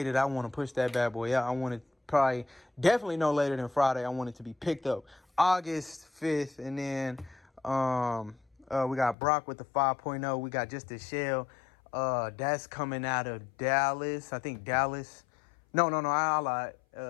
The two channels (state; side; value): drops out; right; at 9.2 s